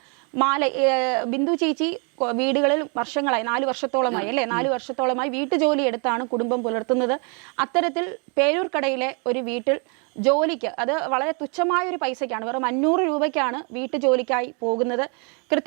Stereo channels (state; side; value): quieter; left; 36.4 dB